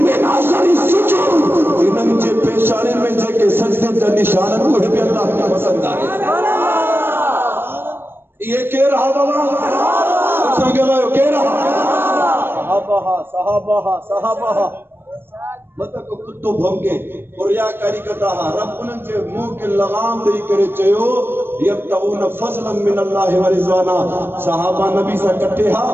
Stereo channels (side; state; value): left; late; 0.10 ms